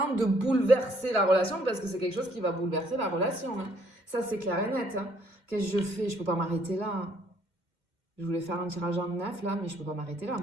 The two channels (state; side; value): late; left; 2.3 ms